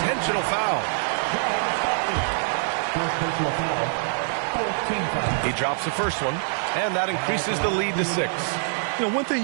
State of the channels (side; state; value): left; silent; digital silence